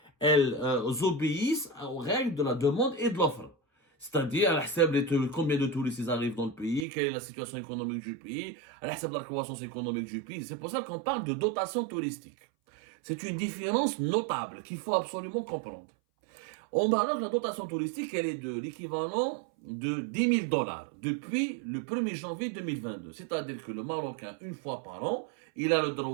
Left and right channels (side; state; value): left; drops out; at 6.9 s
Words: Elles obéissent aux règles de la demande et de l'offre. C'est-à-dire, combien de touristes arrivent dans le pays, quelle est la situation économique du pays, la croissance économique du pays. C'est pour ça qu'on parle de dotation touristique. C'est une différence notable qu'il faut absolument comprendre. Au Maroc, la dotation touristique, elle est de l'équivalent de 10 000 dollars depuis le 1er janvier 2022. C'est-à-dire que le Marocain, une fois par an, il a le